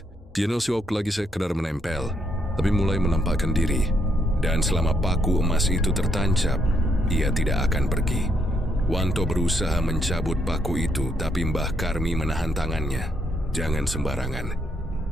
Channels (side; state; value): both; normal; correlation 0.75